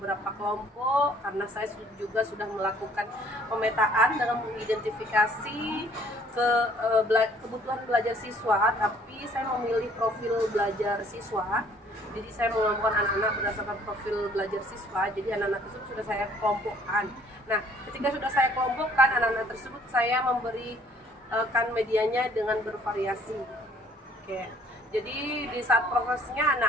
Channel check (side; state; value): both; normal; correlation 0.59